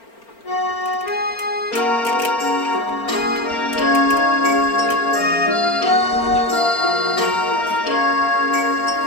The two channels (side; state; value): right; late; 4.4 ms